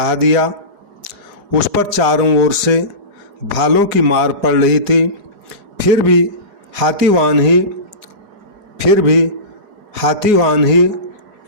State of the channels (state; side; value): late; left; 4.8 ms